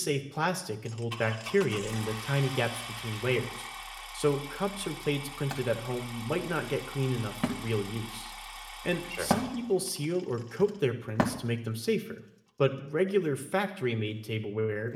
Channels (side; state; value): both; identical; correlation 1.00